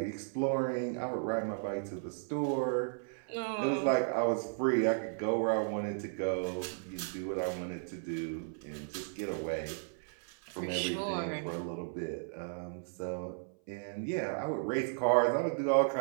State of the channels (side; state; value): left; silent; 55 dB below the other